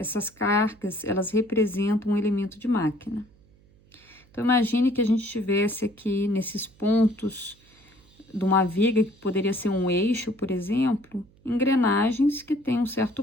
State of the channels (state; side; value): noise; right; hum, 29 dB below the sound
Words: cargas, elas representam um elemento de máquina. Então, imagine que a gente tivesse aqui nesses pontos de uma viga, que poderia ser um eixo, por exemplo, engrenagens que têm um certo